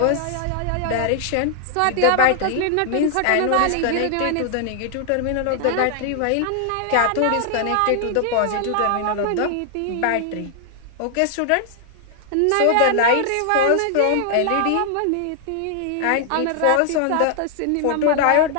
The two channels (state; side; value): different; both; correlation -0.01